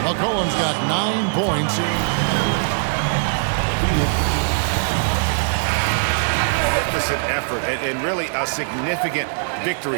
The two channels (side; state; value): left; silent; 65 dB below the other